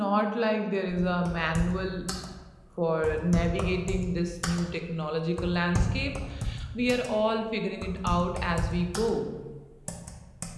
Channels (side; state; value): both; identical; correlation 1.00